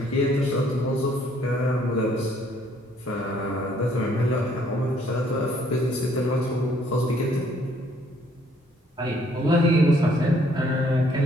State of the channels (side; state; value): both; normal; correlation 0.64